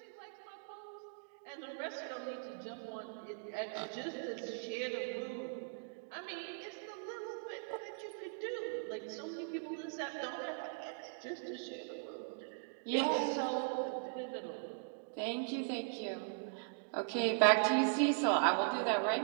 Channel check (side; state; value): left; silent; digital silence